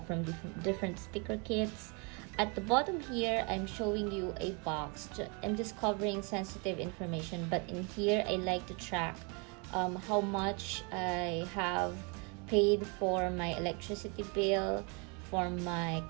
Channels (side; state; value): left; quieter; 33.2 dB